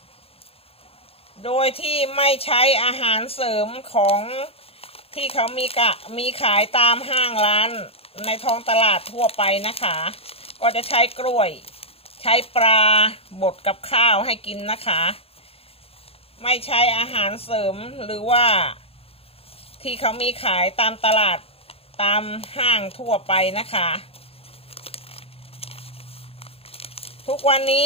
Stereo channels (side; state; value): right; late; 0.28 ms